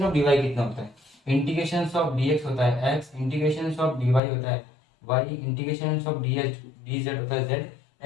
ऑफ dy कितना होता है, इंटीग्रेशन ऑफ dx होता है x, इंटीग्रेशन ऑफ dy होता है y, इंटीग्रेशन ऑफ dz होता है z,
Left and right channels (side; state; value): right; drops out; at 4.2 s